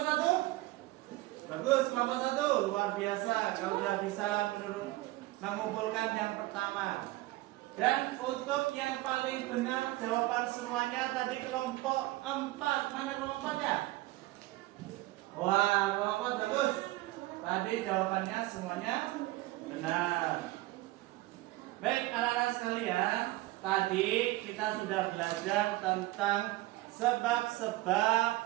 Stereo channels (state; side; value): quieter; left; 18.7 dB